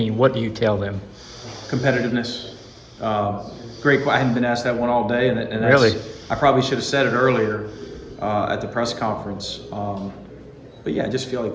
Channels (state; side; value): identical; both; correlation 1.00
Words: what do you tell them? Competitiveness. Great. I hadn't been asked that one all day, and that's, really, I probably should have said it earlier at the press conference. But yeah, I just feel like